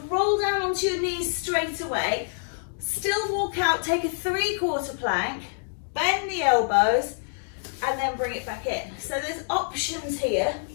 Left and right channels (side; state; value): right; silent; digital silence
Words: roll down onto your knees straight away, still walk out, take a 3/4 plank, bend the elbows, and then bring it back in. So there's options here.